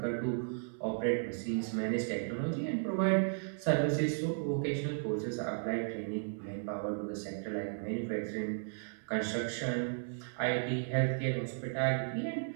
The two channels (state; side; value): silent; left; 55 dB below the other